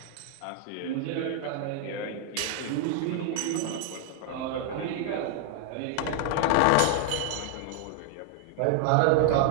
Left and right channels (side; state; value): both; different; correlation 0.00